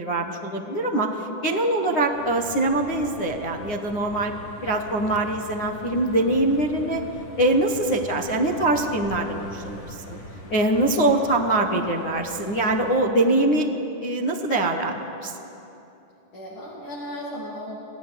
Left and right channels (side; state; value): right; late; 10 ms